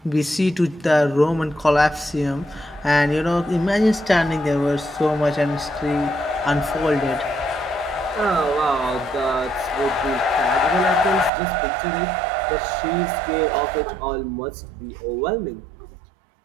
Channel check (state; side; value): drops out; left; at 11.3 s